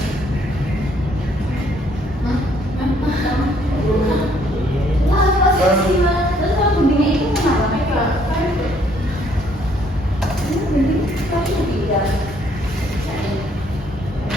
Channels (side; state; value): both; normal; correlation 0.65